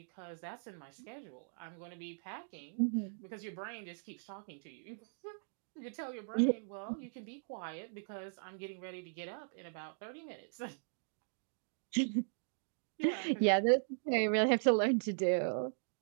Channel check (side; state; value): left; silent; digital silence